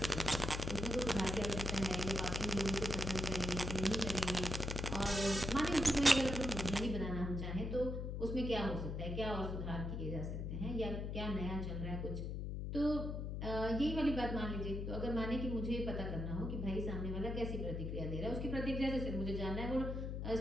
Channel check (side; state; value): left; noise; hum, 3 dB below the sound